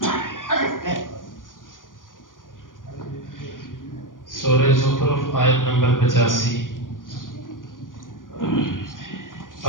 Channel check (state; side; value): late; right; 0.89 ms